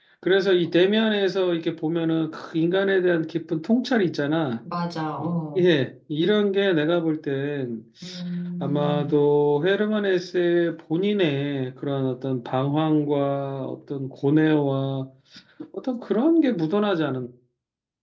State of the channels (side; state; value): both; identical; correlation 1.00